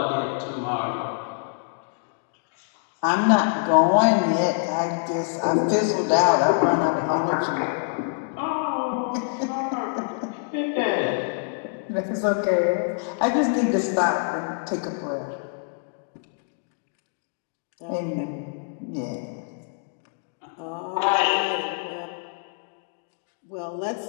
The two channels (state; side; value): silent; right; digital silence